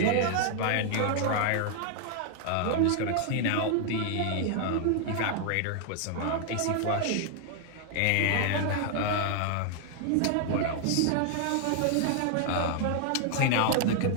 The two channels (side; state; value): both; different; correlation 0.00